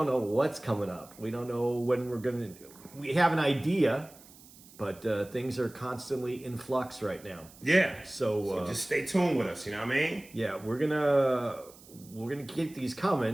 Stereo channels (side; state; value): right; noise; hiss, 22 dB below the sound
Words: up. We don't know when we're going to. We have an idea, but things are constantly in flux right now. Yeah. So just stay tuned with us. You know what I mean? Yeah, we're gonna keep these